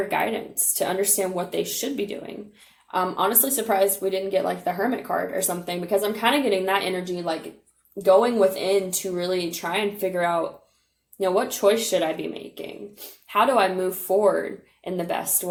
guidance to understand what they should be doing. Honestly surprised we didn't get like the Hermit card or something, because I'm kind of getting that energy, like going within to really try and figure out, what choice should I be making? How do I move forward in the best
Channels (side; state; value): both; identical; correlation 1.00